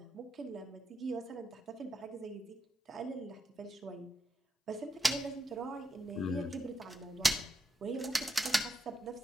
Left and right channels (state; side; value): normal; both; correlation 0.83